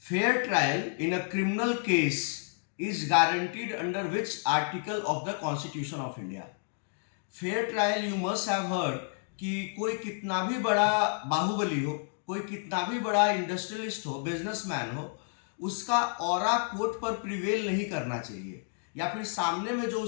Fair trial in a criminal case is guaranteed under which article of the Constitution of India? Fair trial you must have heard कि कोई कितना भी बड़ा बाहुबली हो, कोई कितना भी बड़ा इंडस्ट्रियलिस्ट हो, बिजनेसमैन हो, उसका ऑरा कोर्ट पर प्रिवेल नहीं करना चाहिए, या फिर सामने में जो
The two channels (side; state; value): right; silent; 58 dB below the other